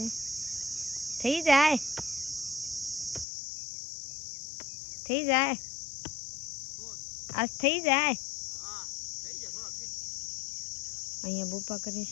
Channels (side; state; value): right; drops out; at 3.2 s